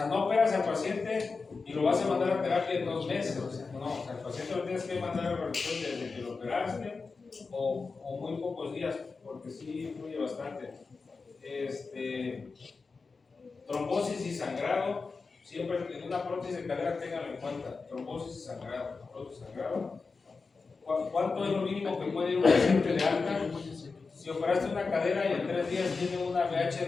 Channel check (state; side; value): quieter; right; 4.4 dB